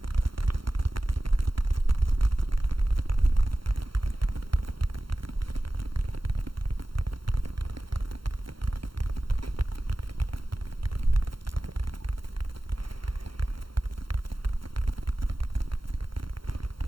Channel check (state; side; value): late; left; 0.73 ms